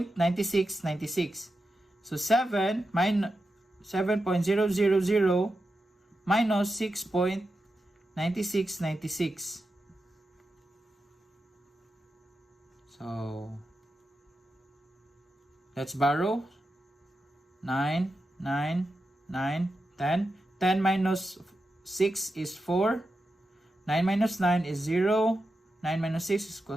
So 7.000 minus 6.9696. So Let's borrow. 9, 9, 9, 10. 10 minus 6 is 4. 9 minus 9 is 0. 9 minus 6 is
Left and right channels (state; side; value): normal; both; correlation 0.89